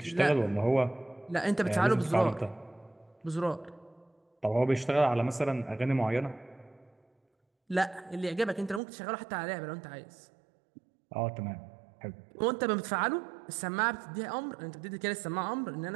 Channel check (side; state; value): left; drops out; at 8.8 s